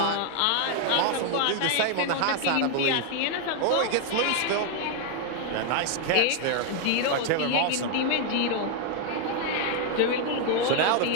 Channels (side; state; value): both; different; correlation 0.00